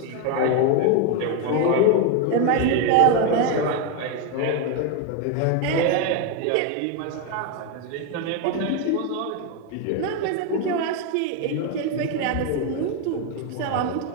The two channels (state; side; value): different; both; correlation 0.01